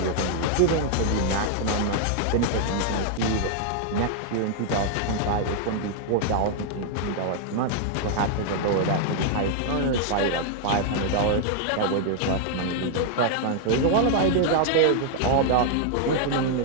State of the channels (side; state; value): both; different; correlation 0.00